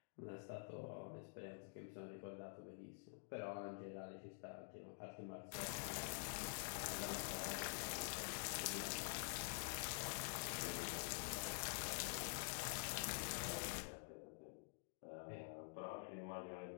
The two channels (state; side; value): silent; right; digital silence